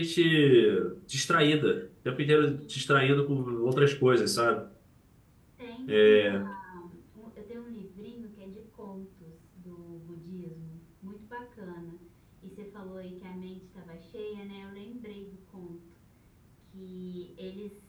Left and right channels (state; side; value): identical; both; correlation 1.00